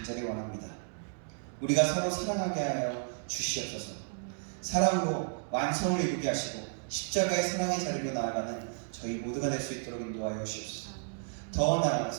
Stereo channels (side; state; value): left; silent; digital silence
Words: 원합니다. 우리가 서로 사랑하게 하여 주시옵소서. 사랑으로 완성을 이루게 하시고 십자가의 사랑의 자리로 나아가는 저희 모두가 될 수 있도록 인도하여 주시옵소서. 더